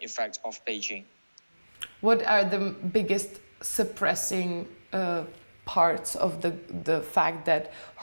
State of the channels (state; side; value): inverted; both; correlation -1.00